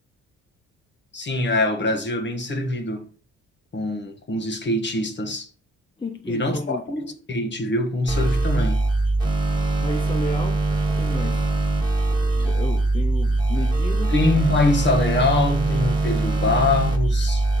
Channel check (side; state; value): both; normal; correlation 0.64